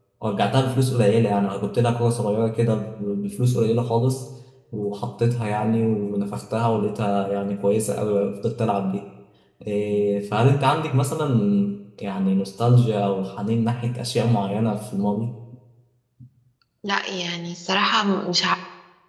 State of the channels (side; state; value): both; identical; correlation 1.00